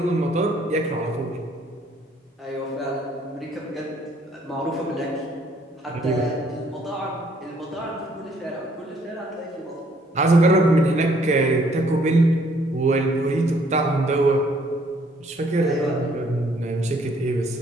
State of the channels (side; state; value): both; normal; correlation 0.64